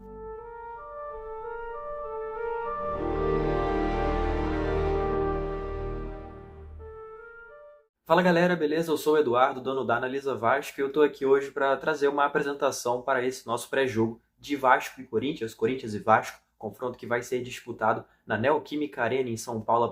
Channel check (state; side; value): identical; both; correlation 1.00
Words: Fala galera, beleza? Eu sou o Eduardo, dono da Analisa Vasco, e eu estou aqui hoje para trazer uma apresentação para esse nosso pré-jogo de Vasco e Corinthians, Corinthians e Vasco, confronto que vai ser disputado na Neoquímica Arena em São Paulo a